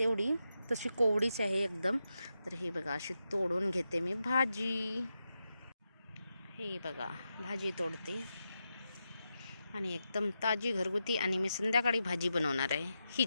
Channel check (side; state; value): both; inverted; correlation -0.88